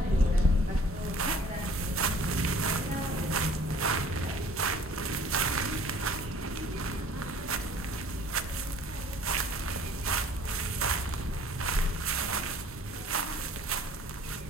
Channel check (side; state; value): both; normal; correlation 0.52